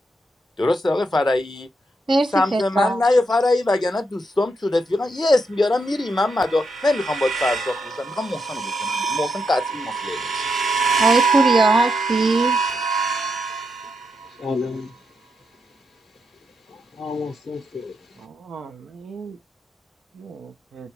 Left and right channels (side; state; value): both; normal; correlation 0.82